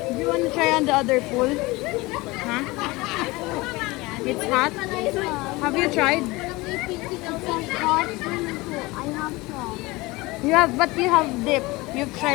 Do you want to try on the other pool? Huh? It's hot? Have you tried? You have, but you have dip. You've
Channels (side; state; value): right; quieter; 22.1 dB